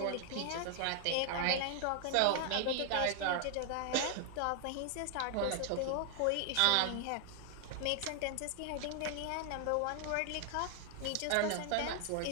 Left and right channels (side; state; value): both; different; correlation 0.00